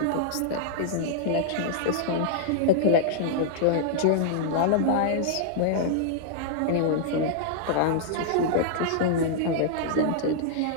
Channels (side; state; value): both; different; correlation -0.01